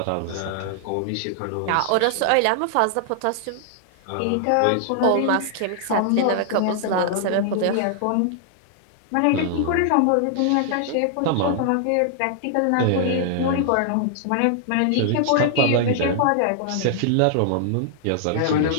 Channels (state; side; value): different; both; correlation 0.00